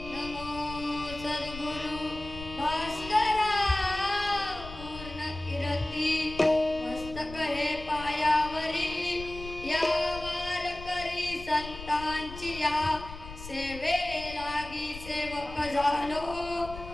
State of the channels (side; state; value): left; noise; rumble, 13 dB below the sound